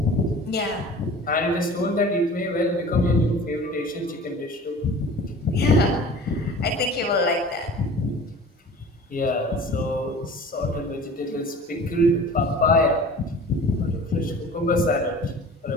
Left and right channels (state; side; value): normal; both; correlation 0.42